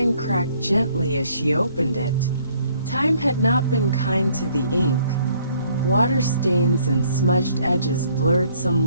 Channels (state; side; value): inverted; both; correlation -0.63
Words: cracked gently as she opened it. Time had not been kind to the ink. Water stains and smudged edges blurred